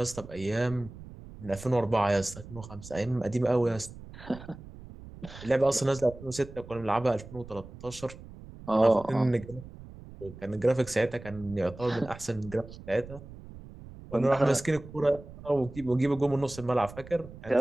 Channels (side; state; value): right; noise; rumble, 16 dB below the sound